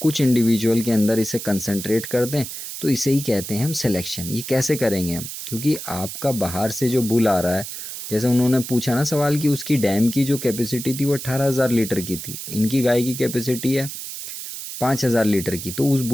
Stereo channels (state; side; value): noise; right; hiss, 8 dB below the sound